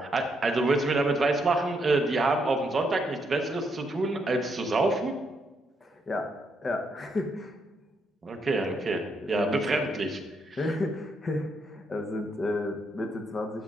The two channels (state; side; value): normal; both; correlation 0.77